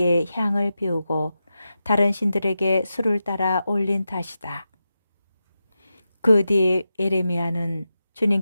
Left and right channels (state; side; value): inverted; both; correlation -0.90